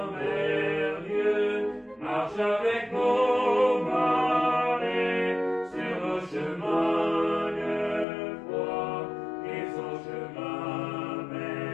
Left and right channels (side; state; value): right; drops out; at 8.1 s